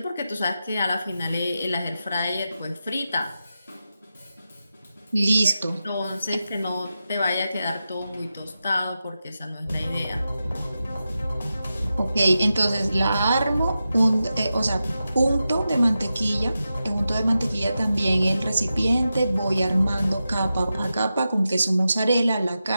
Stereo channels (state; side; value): inverted; both; correlation -0.91